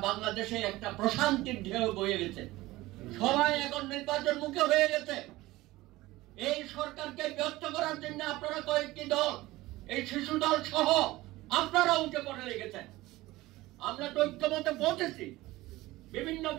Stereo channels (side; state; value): left; quieter; 18.5 dB